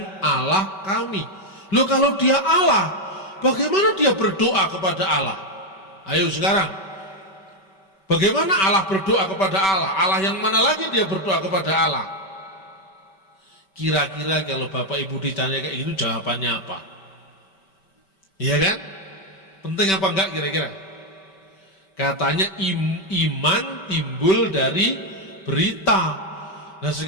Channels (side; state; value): right; late; 5.2 ms